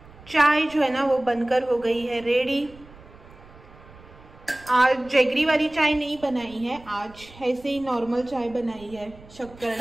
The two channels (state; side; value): noise; right; rumble, 22 dB below the sound